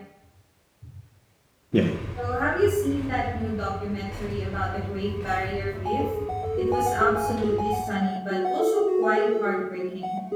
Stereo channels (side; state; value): both; identical; correlation 1.00